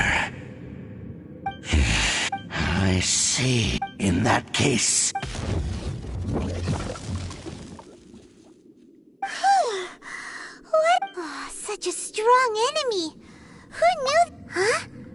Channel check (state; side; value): identical; both; correlation 1.00